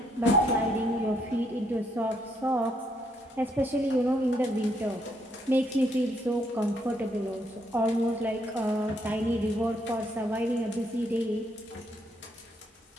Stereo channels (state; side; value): normal; both; correlation 0.73